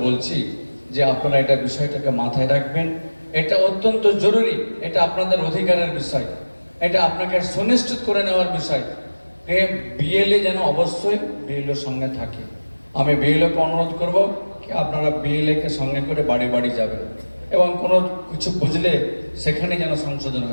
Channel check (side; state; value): both; inverted; correlation -1.00